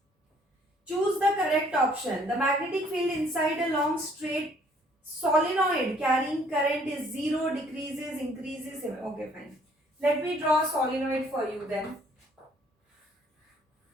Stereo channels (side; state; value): both; normal; correlation 0.61